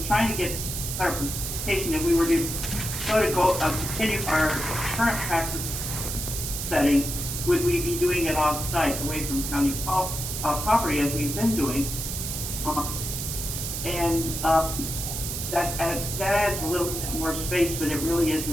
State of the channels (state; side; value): noise; right; hiss, 4 dB below the sound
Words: trying to get clarification if we were to continue our current practice setting, would we be doing it off-site, away from county property, as we've been doing? That adds a little bit more space, but it really isn't